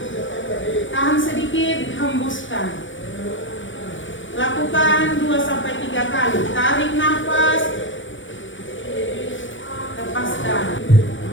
Tahan sedikit, hembuskan. Lakukan 2-3 kali. Tarik nafas. Lepaskan.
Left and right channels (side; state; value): right; late; 0.56 ms